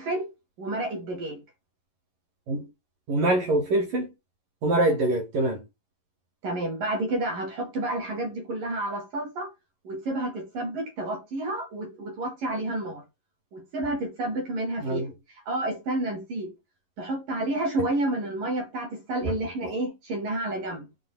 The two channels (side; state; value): left; late; 11 ms